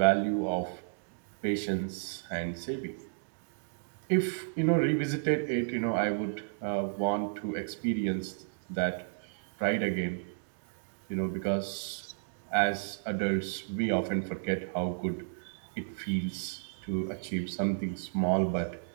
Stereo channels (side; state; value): left; silent; digital silence